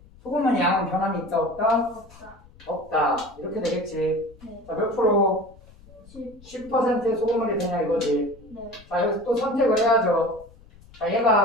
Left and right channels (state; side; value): noise; left; rumble, 24 dB below the sound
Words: 양은 변함이 있다 없다? 없다. 없다. 이렇게 되겠지. 네. 자, 몇 프로? 10. 10%의 소금물이 되냐 이거지. 네. 자, 여기서 또 선택을 해야죠. 자,